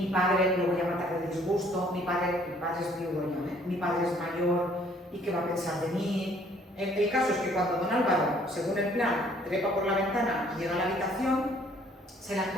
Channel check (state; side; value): normal; both; correlation 0.60